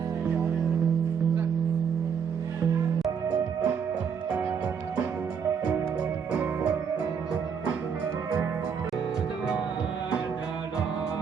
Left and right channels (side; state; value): left; quieter; 6.9 dB